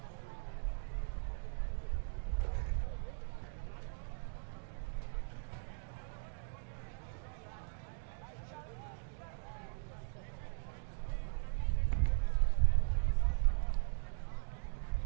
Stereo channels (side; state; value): left; silent; digital silence